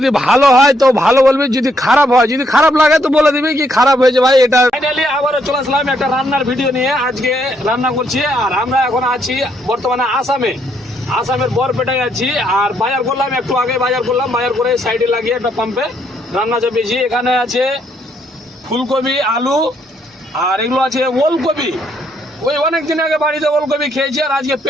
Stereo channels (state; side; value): normal; both; correlation 0.73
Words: ভালো হয় তো ভালো বলবি, যদি খারাপ হয়, যদি খারাপ লাগে তো বলে দিবি কি খারাপ হয়েছে ভাই। এটা ফাইনালি আবারও চলে আসলাম একটা রান্নার ভিডিও নিয়ে। আজকে রান্না করছি আর আমরা এখন আছি বর্তমানে আসামের বরপেটায় আছি। আর বাজার করলাম, একটু আগে বাজার করলাম, বাজার করে সাইডে লাগিয়ে একটা পাম্পে রান্না চাপিয়েছি। এখানে আছে ফুলকপি, আলু, আর এগুলো আছে ওলকপি। ওই অনেক দিন আগে বাড়িতে ওলকপি খেয়েছি আর আজকে